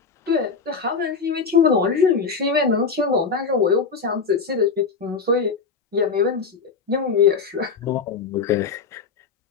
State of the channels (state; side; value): quieter; right; 5.2 dB